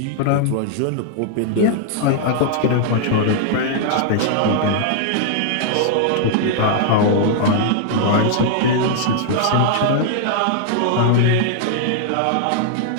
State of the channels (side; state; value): both; different; correlation -0.01